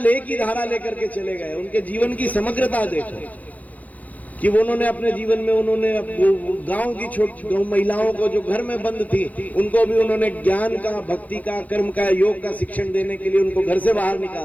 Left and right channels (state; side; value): late; right; 0.077 ms